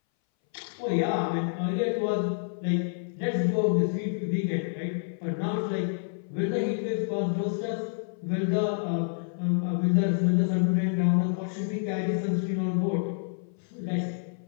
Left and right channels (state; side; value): silent; right; 59 dB below the other